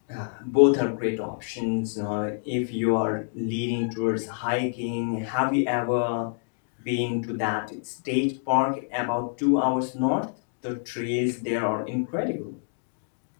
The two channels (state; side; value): silent; right; digital silence